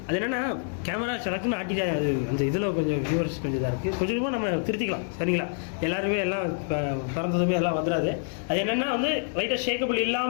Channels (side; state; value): right; silent; 60 dB below the other